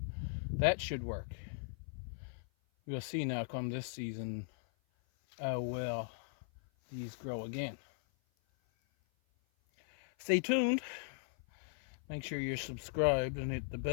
that should work. We'll see now come this season how well these grow again. Stay tuned. Make sure you're subscribed and hit the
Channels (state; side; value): silent; right; 52 dB below the other